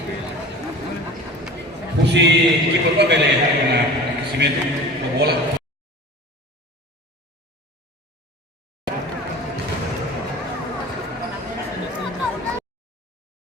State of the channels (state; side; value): normal; both; correlation 0.39